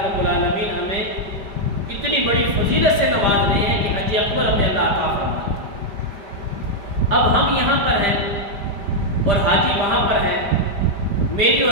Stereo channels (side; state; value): left; late; 5.0 ms